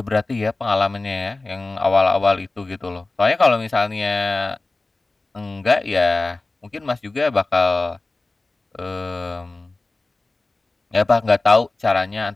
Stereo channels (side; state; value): right; quieter; 3.2 dB